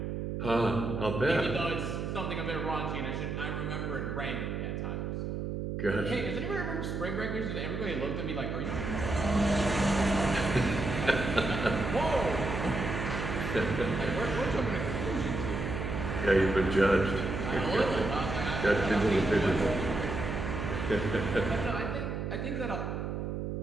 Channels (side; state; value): right; noise; hum, 3 dB below the sound